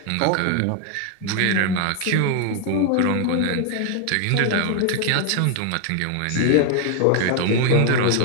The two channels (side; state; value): both; different; correlation 0.00